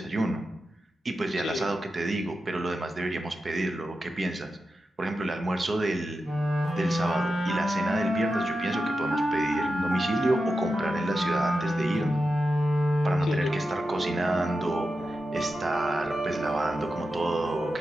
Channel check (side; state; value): both; normal; correlation 0.90